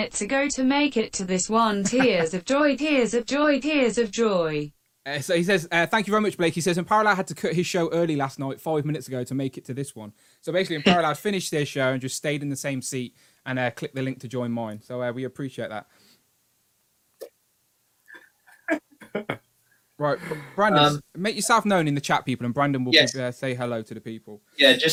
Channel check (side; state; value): both; identical; correlation 1.00